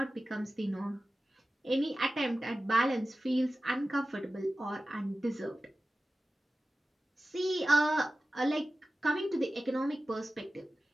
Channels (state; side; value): normal; both; correlation 0.94